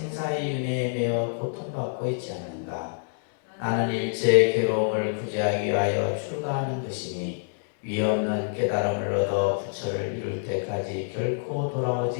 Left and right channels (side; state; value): right; silent; 60 dB below the other